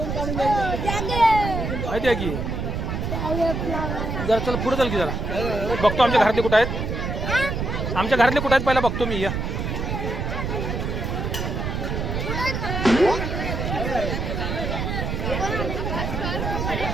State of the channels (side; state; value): right; noise; rumble, 2 dB below the sound